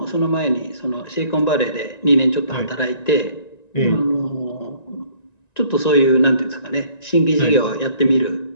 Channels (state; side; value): late; right; 1.9 ms